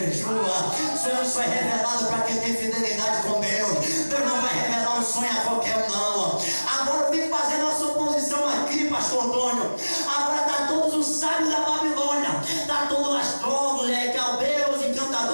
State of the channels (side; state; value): both; inverted; correlation -1.00